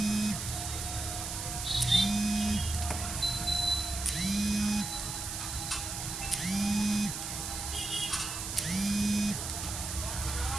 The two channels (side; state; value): right; noise; hiss, 5 dB below the sound